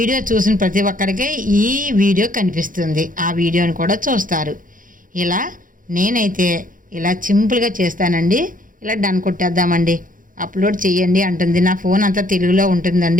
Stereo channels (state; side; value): late; left; 0.39 ms